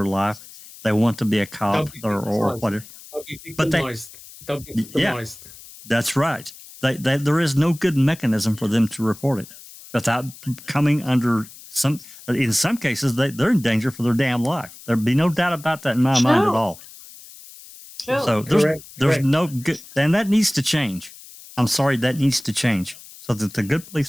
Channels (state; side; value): noise; left; hiss, 19 dB below the sound